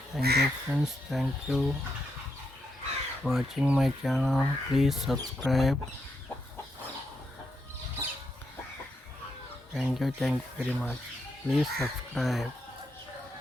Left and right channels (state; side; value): normal; both; correlation 0.82